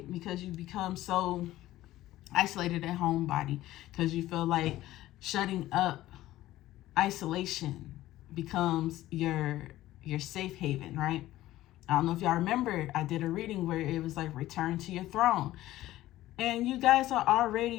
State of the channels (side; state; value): right; quieter; 15.4 dB